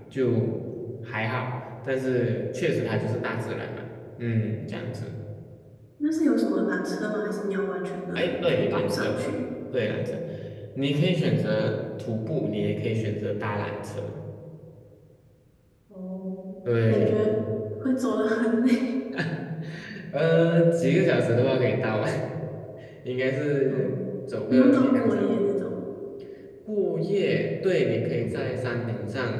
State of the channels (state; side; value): identical; both; correlation 1.00